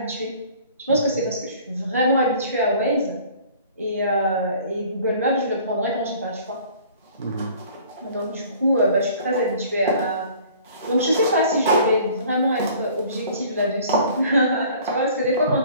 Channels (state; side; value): inverted; both; correlation -0.50